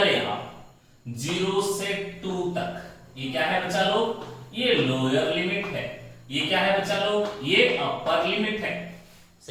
आप 0 से 2 तक, ये क्या है बच्चा लोग? ये लोअर लिमिट है। ये क्या है बच्चा लोग? ये अपर लिमिट है।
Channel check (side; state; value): both; identical; correlation 1.00